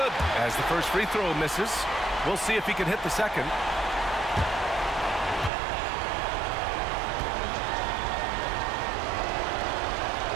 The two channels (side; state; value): left; drops out; at 5.5 s